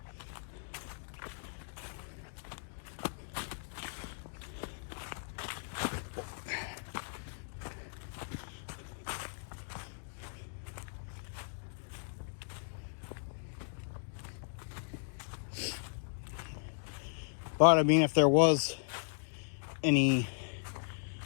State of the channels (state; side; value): silent; right; digital silence